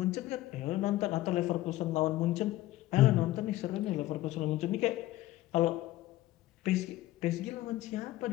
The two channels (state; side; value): quieter; right; 16.2 dB